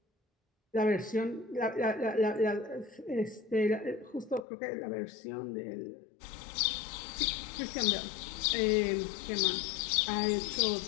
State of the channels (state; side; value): drops out; right; at 4.5 s